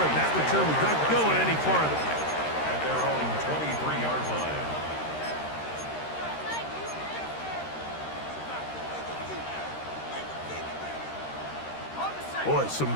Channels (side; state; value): right; late; 13 ms